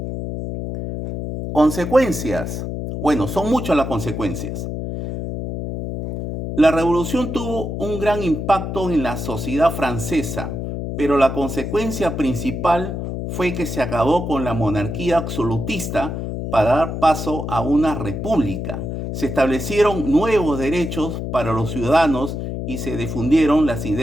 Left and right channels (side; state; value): left; noise; hum, 5 dB below the sound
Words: Consecuencias. Bueno, son muchas las consecuencias. La revolución tuvo un gran impacto en la sociedad francesa, pero la consecuencia principal fue que se acabó con la monarquía absolutista para dar paso a una república. Se establecieron nuevos derechos para los ciudadanos y se difundieron las